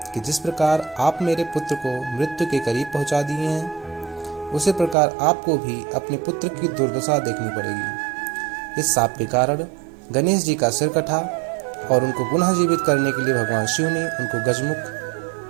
कि जिस प्रकार आप मेरे पुत्र को मृत्यु के करीब पहुंचा दिए हैं, उसी प्रकार आपको भी अपने पुत्र की दुर्दशा देखनी पड़ेगी। इस शाप के कारण गणेश जी का सिर कटा और उनको पुनः जीवित करने के लिए भगवान शिव ने उनको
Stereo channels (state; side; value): drops out; left; at 5.0 s